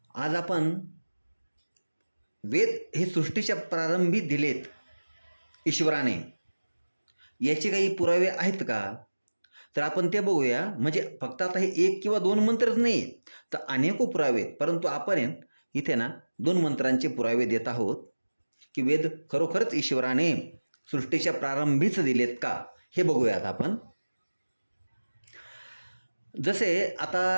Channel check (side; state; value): both; inverted; correlation -1.00